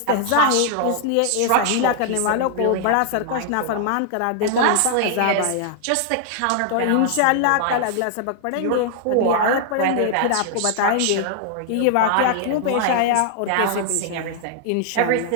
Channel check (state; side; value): different; both; correlation -0.01